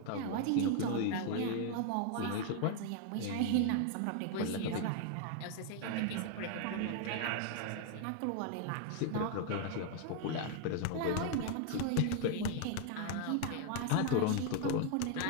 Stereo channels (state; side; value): different; both; correlation 0.00